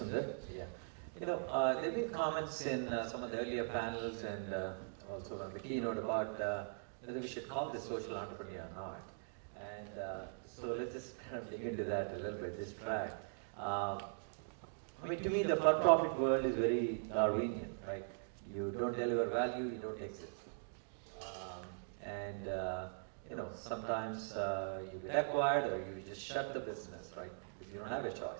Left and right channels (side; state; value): left; silent; digital silence